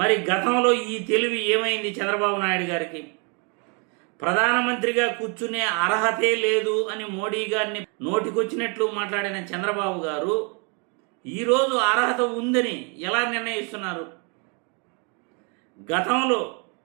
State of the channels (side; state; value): left; quieter; 35.1 dB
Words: గతంలో ఈ తెలివి ఏమైంది చంద్రబాబు నాయుడు గారికి? ప్రధానమంత్రిగా కూర్చునే అర్హతే లేదు అని మోడీ గారిని నోటికొచ్చినట్లు మాట్లాడిన చంద్రబాబు గారు ఈరోజు అర్హత ఉందని ఎలా నిర్ణయిస్తున్నారు? గతంలో